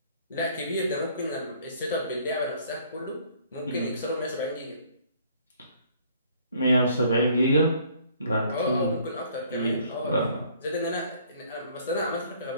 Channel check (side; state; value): both; inverted; correlation -0.59